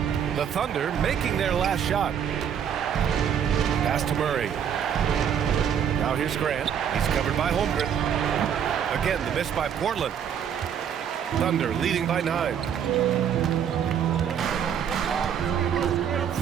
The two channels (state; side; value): quieter; left; 8.4 dB